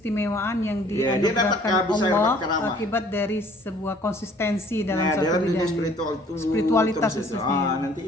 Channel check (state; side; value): normal; both; correlation 0.56